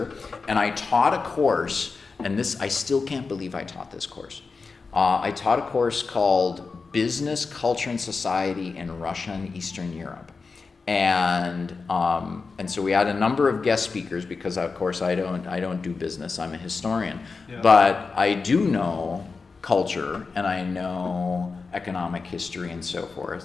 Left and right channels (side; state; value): right; quieter; 4.5 dB